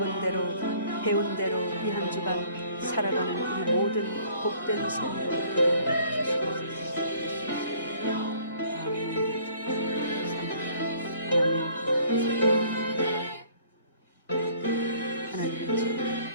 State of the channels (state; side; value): inverted; both; correlation -0.57